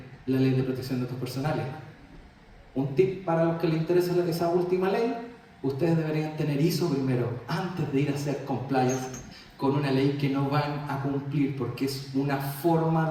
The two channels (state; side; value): identical; both; correlation 1.00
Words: la Ley de Protección de Datos Personales. Un tip para los que les interesa esa última ley: ustedes deberían tener ISO primero, antes de ir a hacer compliance con una ley que no van a cumplir, porque es una forma